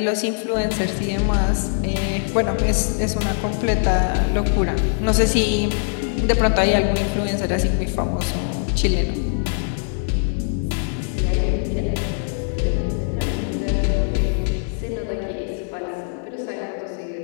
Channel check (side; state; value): right; silent; digital silence